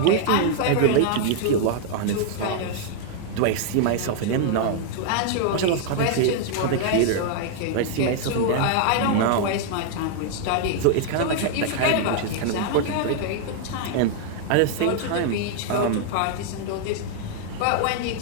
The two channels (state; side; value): different; both; correlation 0.00